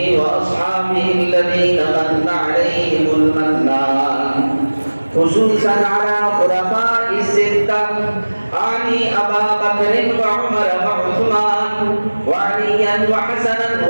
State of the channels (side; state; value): both; inverted; correlation -1.00